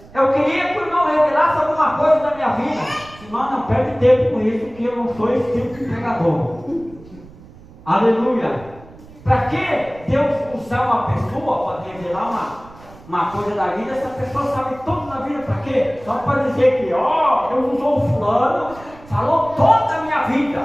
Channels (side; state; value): right; noise; rumble, 21 dB below the sound